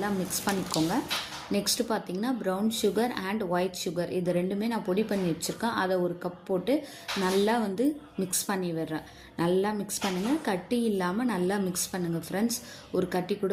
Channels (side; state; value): both; identical; correlation 1.00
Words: மிக்ஸ் பண்ணிக்கோங்க. நெக்ஸ்ட்டு பார்த்தீங்கன்னா brown sugar and white sugar இது ரெண்டுமே நான் பொடி பண்ணி வச்சுருக்கேன். அதை ஒரு கப் போட்டு நல்லா வந்து மிக்ஸ் பண்ணி விடுறேன். நல்லா மிக்ஸ் பண்ணுங்கள், கட்டி இல்லாமல் நல்லா மிக்ஸ் பண்ணுங்கள் ஃப்ரெண்ட்ஸ். ஒரு கட்டி கூட